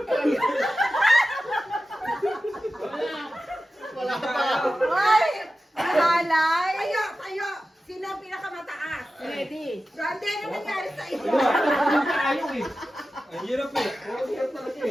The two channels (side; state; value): both; normal; correlation 0.94